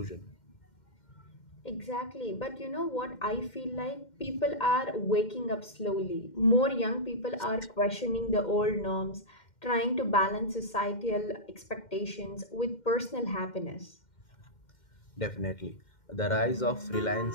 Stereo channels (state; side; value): late; right; 2.1 ms